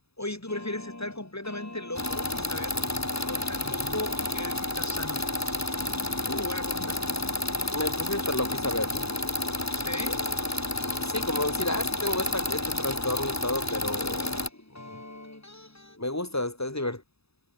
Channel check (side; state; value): right; late; 0.78 ms